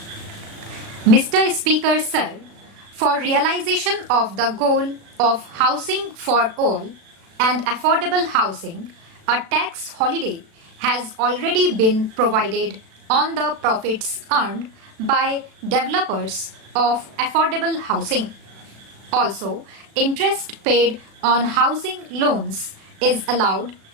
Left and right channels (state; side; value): late; left; 37 ms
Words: Mr. Speaker, sir, for realization of the goal of housing for all and affordable housing, a tax holiday has already been provided on the profits earned by developers of affordable housing. Also, interest paid on housing loans is allowed